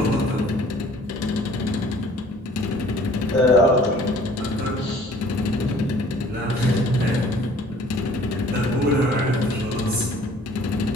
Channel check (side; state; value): both; normal; correlation 0.53